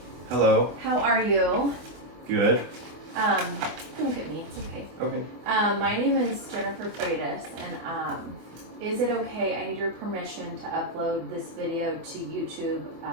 Hello. How are you? Good. Don't look at me, it's okay. Okay. My name is Jennifer Freitas, and is it okay, I need your permission to upload this video to YouTube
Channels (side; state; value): left; late; 24 ms